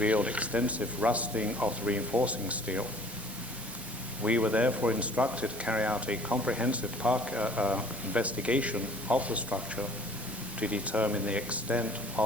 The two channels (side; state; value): right; noise; hiss, 13 dB below the sound